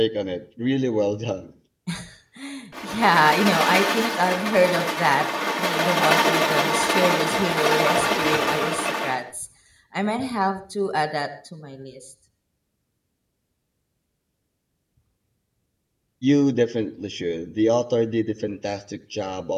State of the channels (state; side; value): identical; both; correlation 1.00